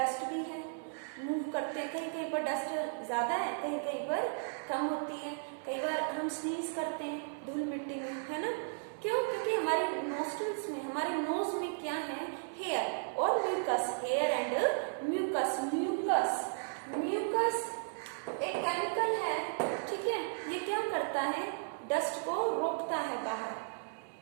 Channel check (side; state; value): left; silent; digital silence